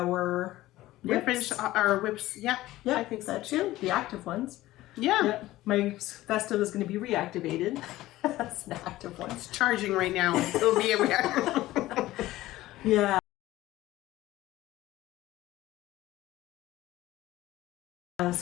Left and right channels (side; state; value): right; quieter; 16.4 dB